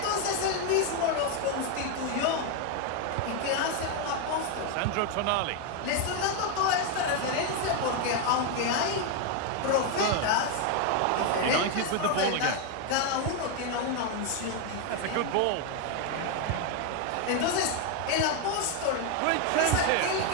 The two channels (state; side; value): different; both; correlation 0.01